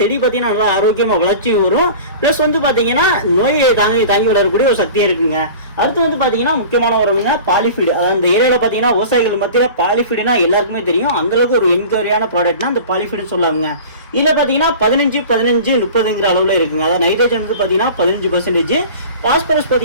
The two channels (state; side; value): inverted; both; correlation -0.39